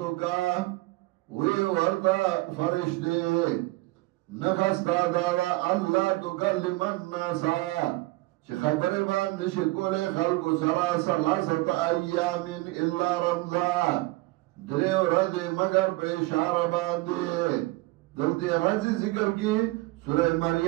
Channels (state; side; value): quieter; left; 20.6 dB